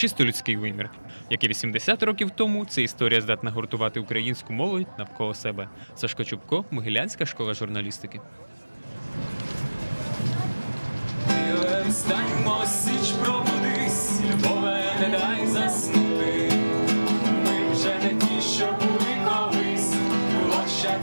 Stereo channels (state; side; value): inverted; both; correlation -1.00